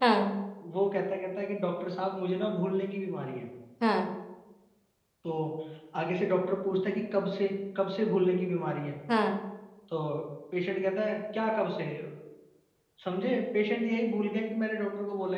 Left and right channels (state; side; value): identical; both; correlation 1.00